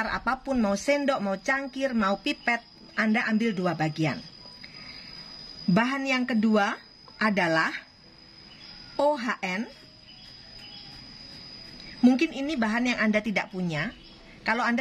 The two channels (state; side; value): identical; both; correlation 1.00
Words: apapun, mau sendok, mau cangkir, mau pipet, Anda ambil 2 bagian. Bahan yang kedua adalah OHN. Mungkin ini bahan yang Anda tidak punya. Kalau